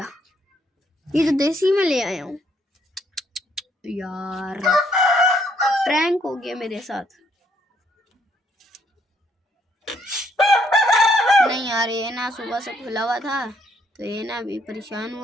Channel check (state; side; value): normal; both; correlation 0.69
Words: ये तो देसी में ले आया हूँ यार, प्रैंक हो गया मेरे साथ। नहीं यार, ये ना सुबह से खुला हुआ था तो ये ना अभी परेशान